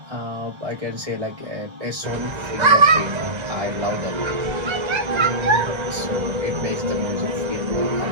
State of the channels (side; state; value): left; late; 1.3 ms